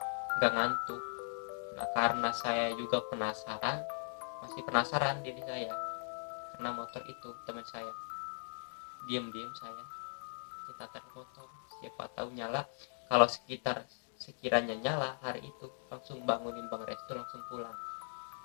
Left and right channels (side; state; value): right; silent; digital silence